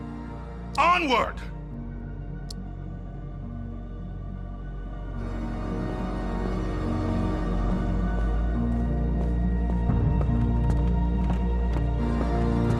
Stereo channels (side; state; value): both; identical; correlation 1.00